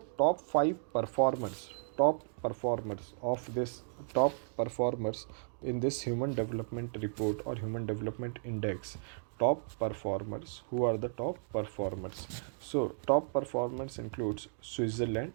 top performers in this human development report or human development index, top performers. Who are the top performers? So top performers includes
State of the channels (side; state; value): left; silent; digital silence